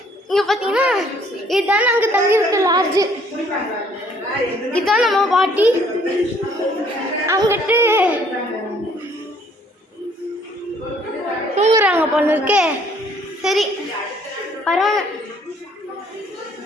இங்கே பார்த்தீங்கன்னா இதுதான் நாங்கள் தங்கியிருக்க லாட்ஜு. இதுதான் நம்ம பாட்டி. அங்கிட்டு தூங்குறாங்க போல இருக்கே. சரி பரவாயில்ல.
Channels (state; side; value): normal; both; correlation 0.61